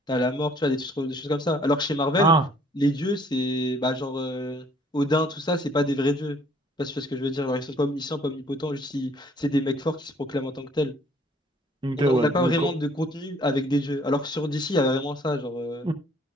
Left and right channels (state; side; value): normal; both; correlation 0.60